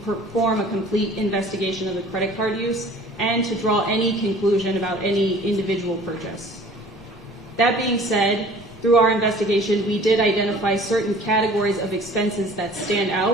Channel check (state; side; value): normal; both; correlation 0.48